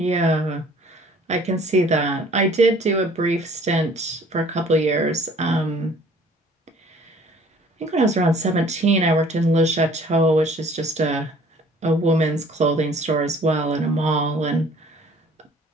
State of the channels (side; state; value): both; normal; correlation 0.53